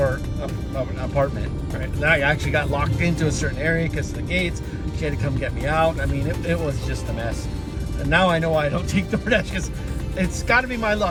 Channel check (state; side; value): identical; both; correlation 1.00